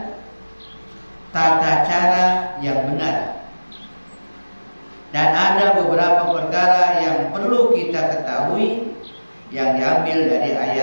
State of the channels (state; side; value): inverted; both; correlation -1.00